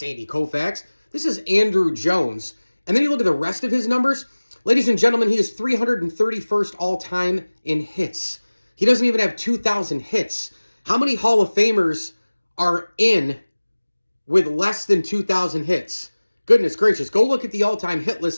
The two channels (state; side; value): inverted; both; correlation -1.00